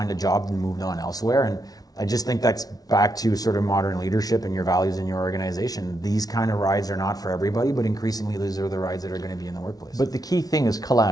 a job and moved on elsewhere. And I just think that's back to sort of modern leadership and your values in your organization. These kind of rides are not for everybody, but increasingly these are the rides that are going to be in the workplace. But the key thing is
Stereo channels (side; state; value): right; late; 0.18 ms